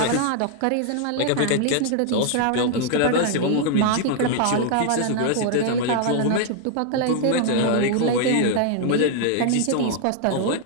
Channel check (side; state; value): both; different; correlation 0.00